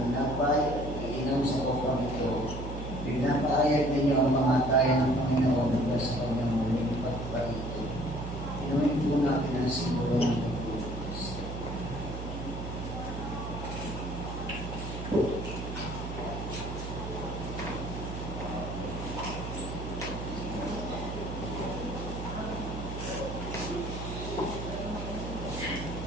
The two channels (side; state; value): right; noise; hum, 6 dB below the sound